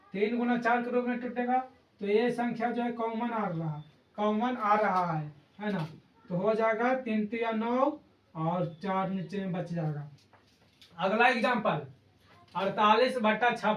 3 गुना 4 के रूप में टूटेगा। तो ये संख्या जो है कॉमन आ रहा है ना। तो हो जाएगा 3 3 9 और 4 नीचे में बच जाएगा। अगला एग्जाम्पल 48 बटा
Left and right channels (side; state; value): both; identical; correlation 1.00